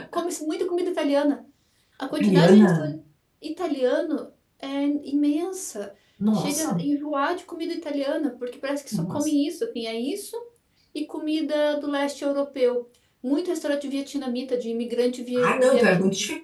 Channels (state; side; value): identical; both; correlation 1.00